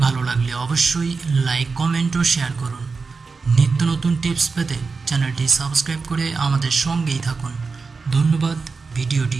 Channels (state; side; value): quieter; left; 4.5 dB